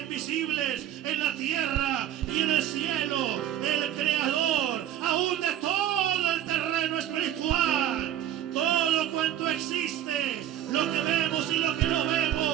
en la tierra y en el cielo, el creador aún de todo el terreno espiritual. Todo cuanto existe, lo que vemos y lo que no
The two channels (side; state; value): left; quieter; 11.4 dB